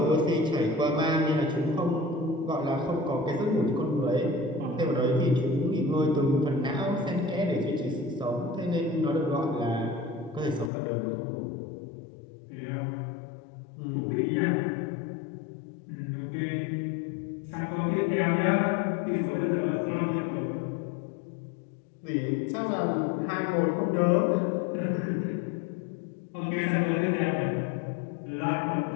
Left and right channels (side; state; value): right; drops out; at 10.7 s